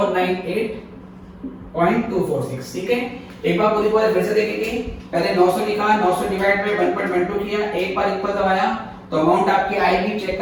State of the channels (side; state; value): both; identical; correlation 1.00